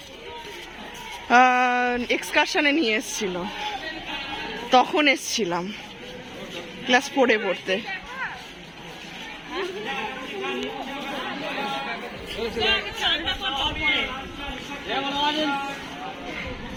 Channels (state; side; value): identical; both; correlation 1.00